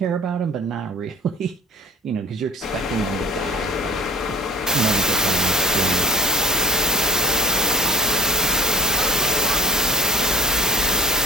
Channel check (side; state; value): both; normal; correlation 0.45